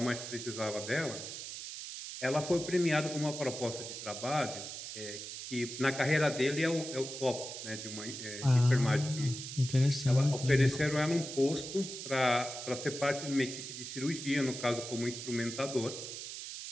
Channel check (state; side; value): noise; right; hiss, 8 dB below the sound